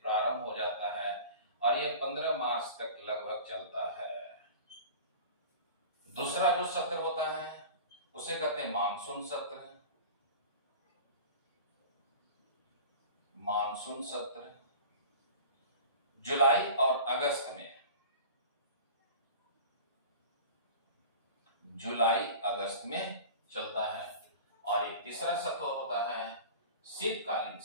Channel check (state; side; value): inverted; both; correlation -0.38